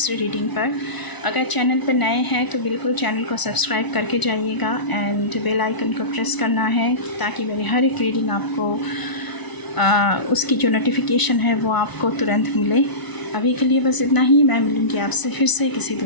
रीडिंग पर। अगर चैनल पर नए हैं तो बिल्कुल चैनल को सब्सक्राइब करके जाइएगा एंड बेल आइकन को प्रेस करना है ताकि मेरी हर एक रीडिंग आपको उसकी जो नोटिफिकेशन है वो आपको तुरंत मिले। अभी के लिए बस इतना ही। मैं मिलूँगी आपसे फिर से किसी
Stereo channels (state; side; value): late; right; 1.0 ms